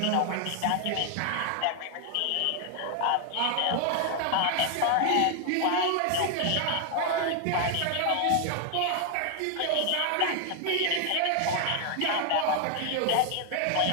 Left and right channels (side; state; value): both; different; correlation 0.00